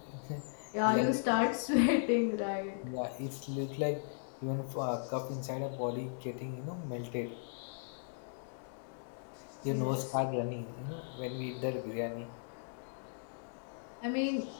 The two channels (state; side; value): silent; right; digital silence